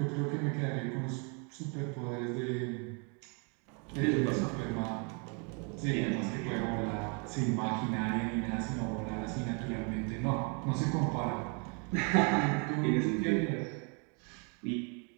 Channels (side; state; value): left; quieter; 36.1 dB